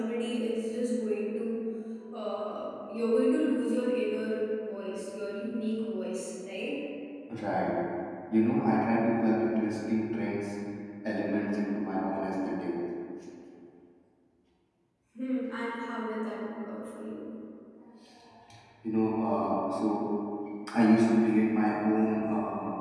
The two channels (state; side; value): identical; both; correlation 1.00